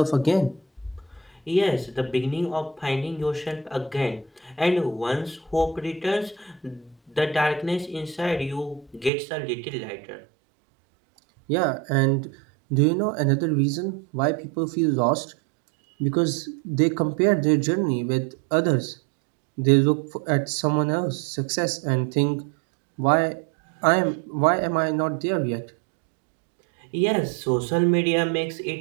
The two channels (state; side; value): drops out; left; at 9.1 s